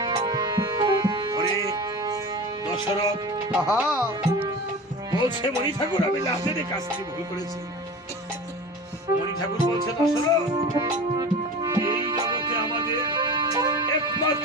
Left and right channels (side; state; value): both; normal; correlation 0.34